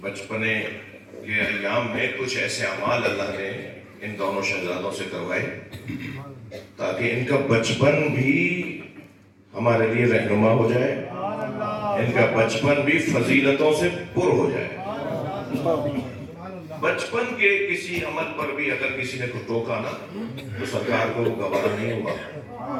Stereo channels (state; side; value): identical; both; correlation 1.00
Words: کے ایام میں کچھ ایسے اعمال اللہ نے ان دونوں شہزادوں سے کروائے تاکہ ان کا بچپن بھی ہمارے لیے رہنما ہو جائے، ان کا بچپن بھی فضیلتوں سے پر ہو جائے۔ بچپن کے کسی عمل پر بھی اگر کسی نے کو ٹوکا نا تو سرکار کو وہ گوارا نہیں ہوا،